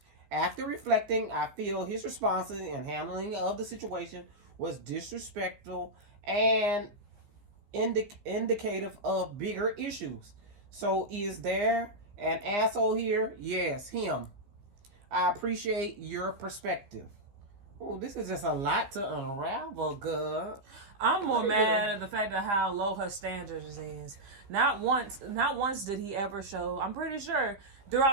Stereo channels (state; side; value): late; left; 15 ms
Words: After reflecting, I feel his responses and handling of the situation was disrespectful and indicative of bigger issues. So, is there an asshole here? Yes, him. I appreciate your perspective. Oh, this is just a lot to unravel, girl. I'm more mad at the fact of how low her standards is. Not once did he ever show. I'm pretty sure